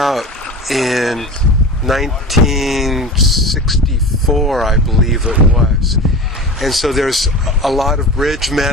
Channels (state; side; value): normal; both; correlation 0.33